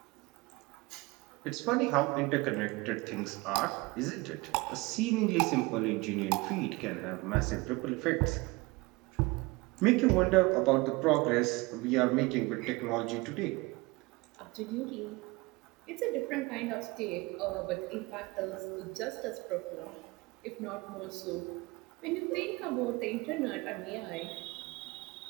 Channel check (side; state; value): left; quieter; 23.6 dB